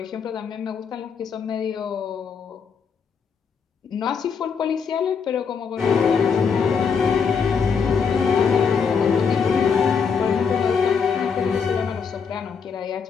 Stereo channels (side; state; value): right; quieter; 6.1 dB